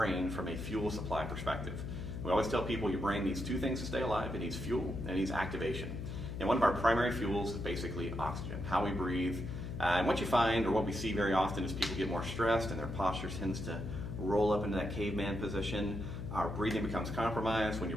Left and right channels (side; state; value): left; noise; hum, 6 dB below the sound